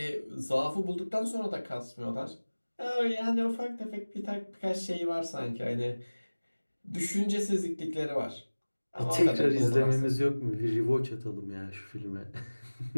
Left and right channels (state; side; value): inverted; both; correlation -1.00